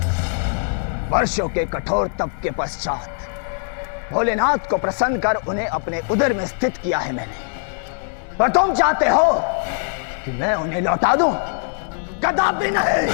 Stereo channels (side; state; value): right; silent; 58 dB below the other